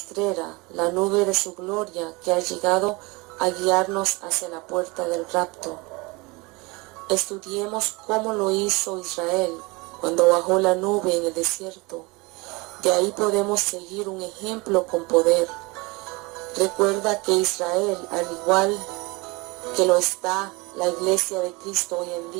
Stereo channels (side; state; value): left; quieter; 25.7 dB